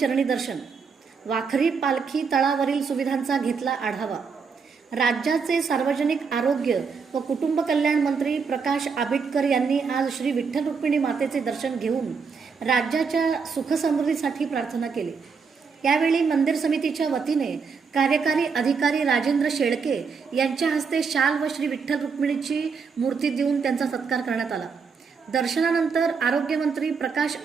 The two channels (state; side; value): quieter; left; 5.5 dB